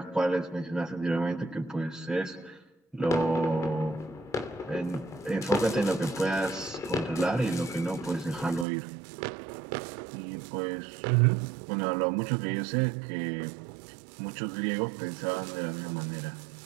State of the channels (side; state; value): left; drops out; at 8.7 s